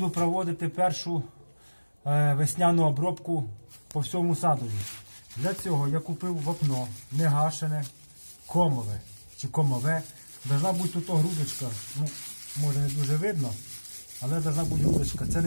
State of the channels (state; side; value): inverted; both; correlation -1.00